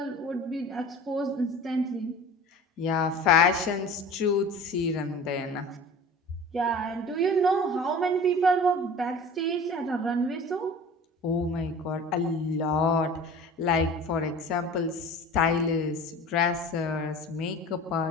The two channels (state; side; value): normal; both; correlation 0.40